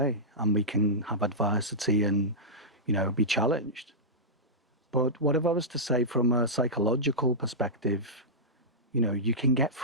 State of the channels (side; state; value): both; normal; correlation -0.12